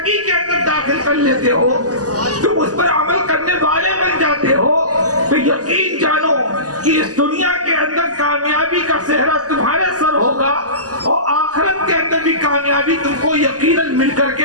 کے اندر داخل کر لیتے ہو، تم اس پر عمل کرنے والے بن جاتے ہو، تو یقین جانو کہ اس دنیا کے اندر کامیابی کا صحرا تمہارے سر ہوگا، اور آخرت کے اندر بھی کامیابی تم کو یقیناً مل کر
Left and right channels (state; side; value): late; left; 0.67 ms